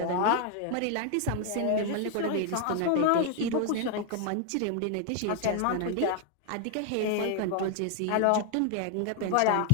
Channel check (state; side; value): different; both; correlation 0.00